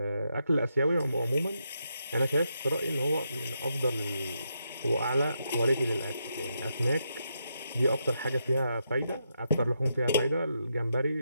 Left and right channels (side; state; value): both; inverted; correlation -0.82